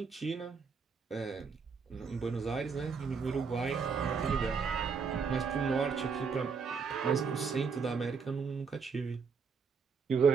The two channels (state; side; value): quieter; left; 5.6 dB